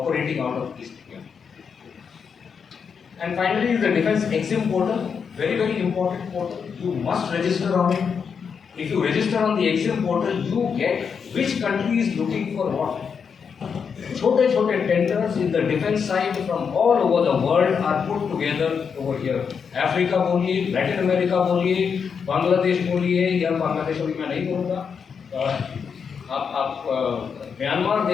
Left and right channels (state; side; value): quieter; right; 6.4 dB